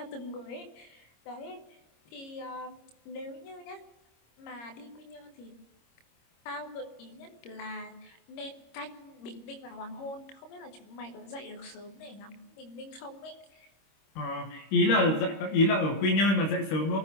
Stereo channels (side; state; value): right; late; 26 ms